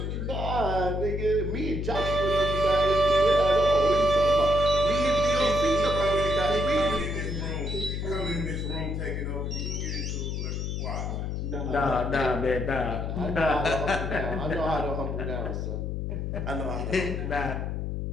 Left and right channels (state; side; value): noise; left; hum, 2 dB below the sound